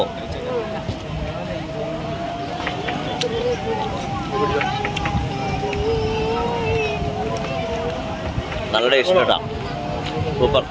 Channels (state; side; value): identical; both; correlation 1.00